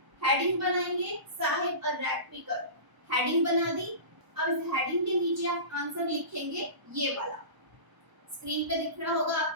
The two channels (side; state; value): left; late; 1.0 ms